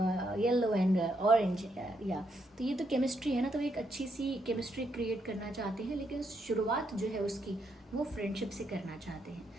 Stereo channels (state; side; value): normal; both; correlation 0.77